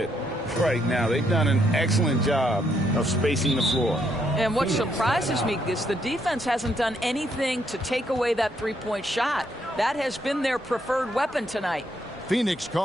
right now. They've done an excellent job of spacing the floor. And what surprises me is the defense hasn't done anything to take away that three-point shot. That has been their preferred weapon tonight. Phoenix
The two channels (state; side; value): normal; both; correlation 0.74